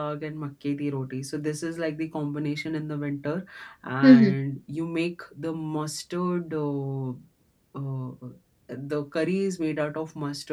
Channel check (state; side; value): identical; both; correlation 1.00